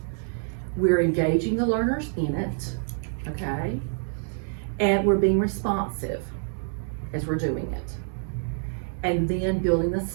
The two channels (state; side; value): silent; left; 60 dB below the other